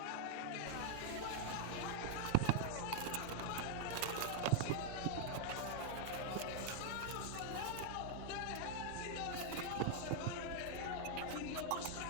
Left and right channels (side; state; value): both; different; correlation 0.00